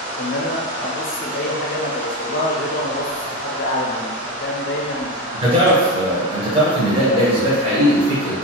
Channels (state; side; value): normal; both; correlation 0.19